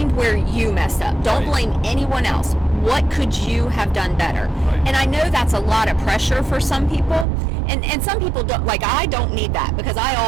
where you messed up. Don't Right. blame anyone else. What could you have done better? Right. And I know that's a lot of pressure for some people, and some people don't. Like I don't need that because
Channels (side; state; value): left; drops out; at 7.2 s